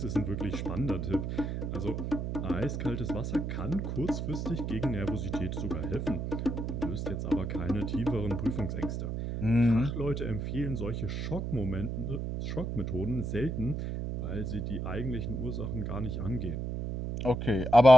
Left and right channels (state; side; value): noise; right; hum, 3 dB below the sound